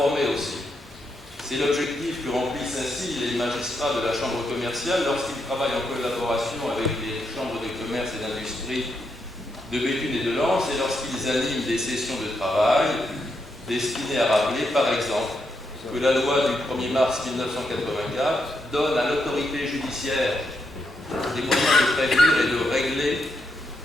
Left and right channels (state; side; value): normal; both; correlation 0.81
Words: aussi. C'est l'objectif que remplissent ainsi les magistrats de la Chambre commerciale lorsqu'ils travaillent en collaboration avec les chambres de commerce et d'industrie de Béthune et de Lens et lorsqu'ils animent des sessions de travail destinées à rappeler, par exemple, que la loi du 1er mars 1984 donne à l'autorité judiciaire des moyens de prévenir et de régler